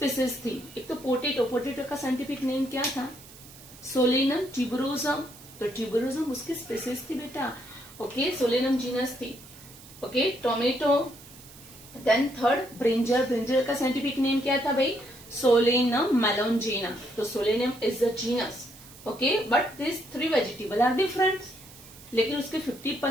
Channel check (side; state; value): right; noise; hiss, 20 dB below the sound